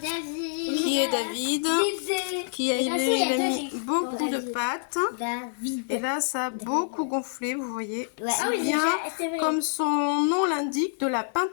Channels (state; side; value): silent; right; digital silence